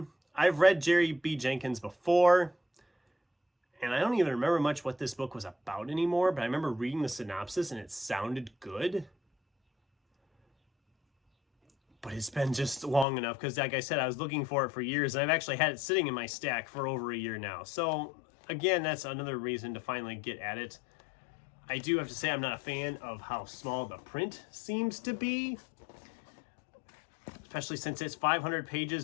I've read Jerry B. Jenkins before, and I don't even remember much what this book was about anymore, but I remember reading the synopsis and it sounded good. But it's been just long enough because, like I said, I was looking for it for years, and I've actually had it sitting in my stack for over a year now. So, again, that's another reason to finally get at it. I do have to say I'm not a fan of how small the print seems to be, especially since it's 500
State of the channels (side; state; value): right; drops out; at 13.1 s